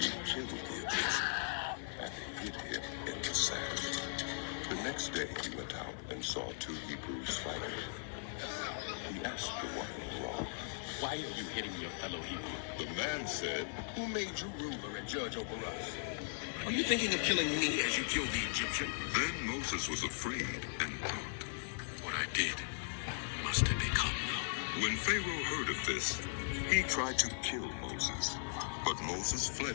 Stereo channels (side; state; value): right; silent; digital silence